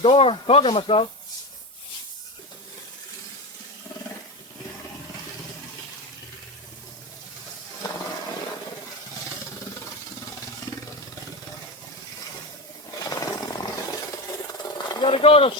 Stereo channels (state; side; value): normal; both; correlation 0.19